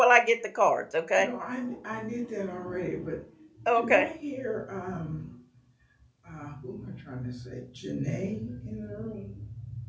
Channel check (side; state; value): both; identical; correlation 1.00